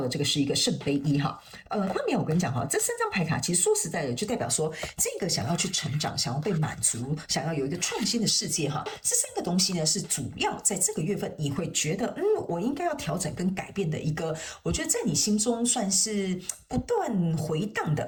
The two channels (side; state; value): both; identical; correlation 1.00